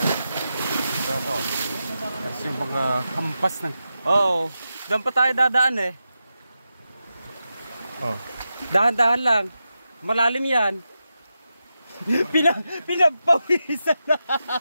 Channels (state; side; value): inverted; both; correlation -0.89